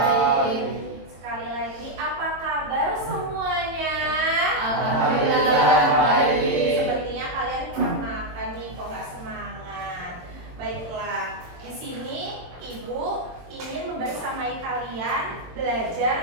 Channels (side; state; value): left; late; 22 ms